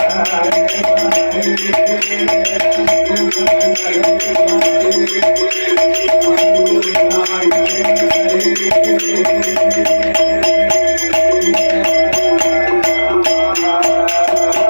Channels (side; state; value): both; inverted; correlation -1.00